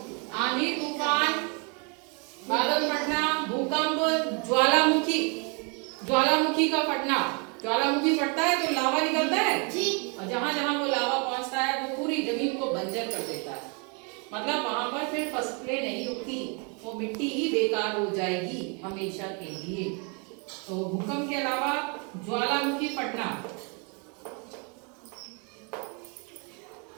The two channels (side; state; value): left; quieter; 35.0 dB